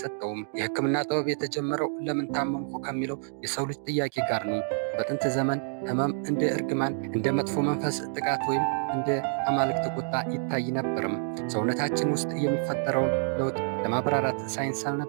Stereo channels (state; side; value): silent; left; digital silence